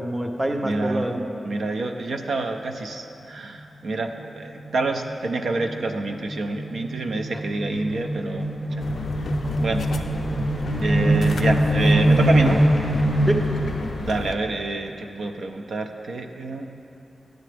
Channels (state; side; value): normal; both; correlation 0.89